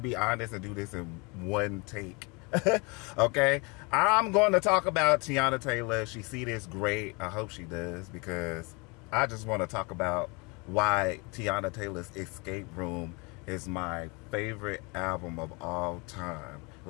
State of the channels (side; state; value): right; quieter; 29.2 dB